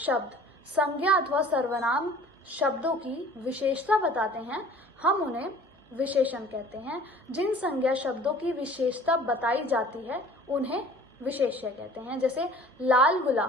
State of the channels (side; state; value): both; normal; correlation 0.48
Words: संज्ञा अथवा सर्वनाम शब्दों की विशेषता बताते हैं हम उन्हें विशेषण कहते हैं। जिन संज्ञा शब्दों की विशेषता बताई जाती है उन्हें विशेष्य कहते हैं। जैसे लाल